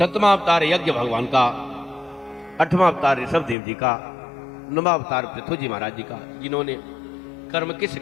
अवतार यज्ञ भगवान का, 8वां अवतार ऋषभ देव जी का, 9वां अवतार पृथ्वी जी महाराज जी का, जिन्होंने कर्म की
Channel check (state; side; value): drops out; right; at 3.6 s